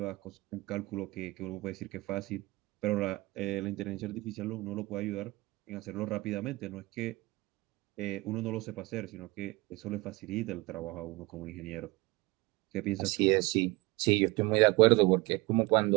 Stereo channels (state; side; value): quieter; left; 22.4 dB